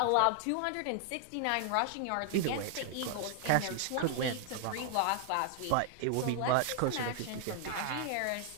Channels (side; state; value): both; different; correlation 0.00